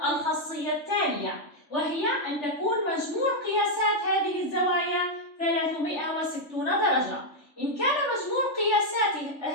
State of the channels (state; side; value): late; right; 3.4 ms